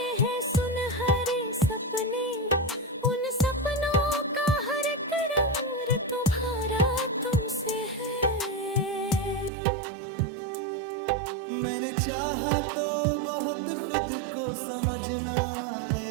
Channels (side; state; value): left; drops out; at 9.5 s